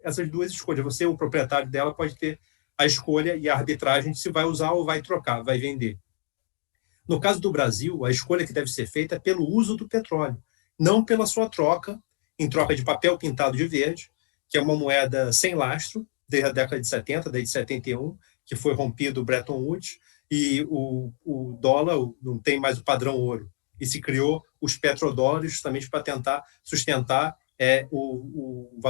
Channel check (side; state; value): right; silent; 60 dB below the other